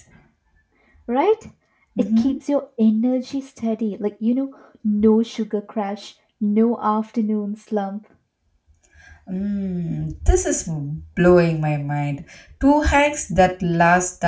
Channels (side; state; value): both; identical; correlation 1.00